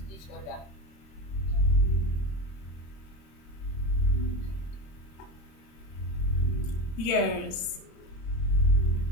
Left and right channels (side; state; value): right; late; 26 ms